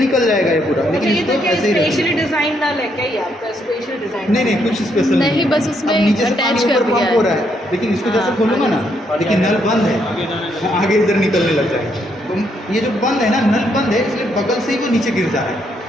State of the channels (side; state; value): both; normal; correlation 0.74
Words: जाएगा ये पूरा, लेकिन ये इसको तो क्या ऐसे ही स्पेशली डिजाइन डाल है क्या, ये आपका स्पेशल डिजाइन? नहीं कुछ स्पेशल नहीं, बस उसमें अब नीचे से attach पानी कर ऊपर दिया पंप है। हो रहा है, लेकिन इसको जैसे हाँ, खोलूंगा ना, लेकिन नल बंद है, आगे इधर निकलने लग जाएगा। तो ये जो बंद है ना, नल बंद है, इसलिए बगल से ही वो नीचे गिर जा रहा